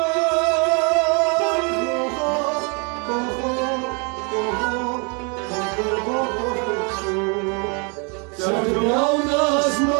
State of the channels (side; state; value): left; quieter; 34.2 dB